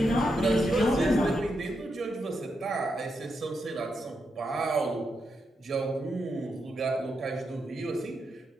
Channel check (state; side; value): normal; both; correlation 0.84